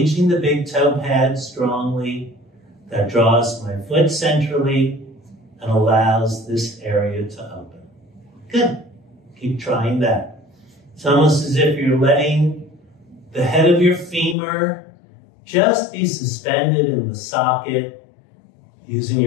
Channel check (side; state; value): right; drops out; at 14.4 s